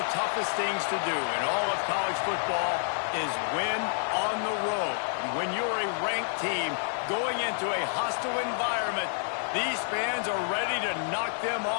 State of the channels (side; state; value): right; silent; 59 dB below the other